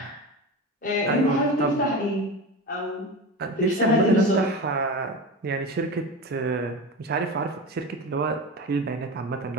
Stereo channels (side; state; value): both; normal; correlation 0.26